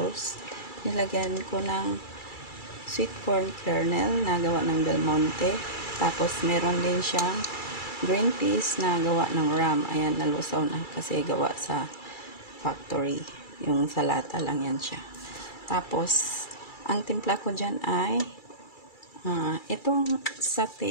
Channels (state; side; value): late; right; 2.3 ms